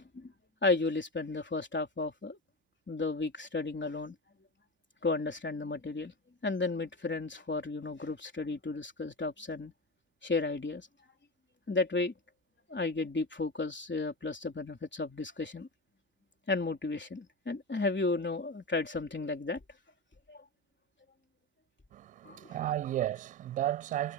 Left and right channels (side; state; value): both; normal; correlation 0.21